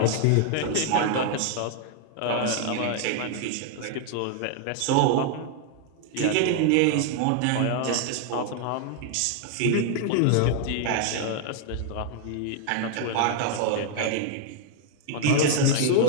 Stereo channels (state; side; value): different; both; correlation 0.00